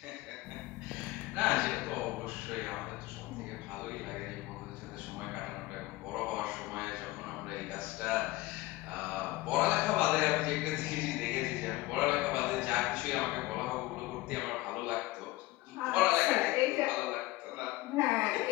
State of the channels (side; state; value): right; quieter; 19.1 dB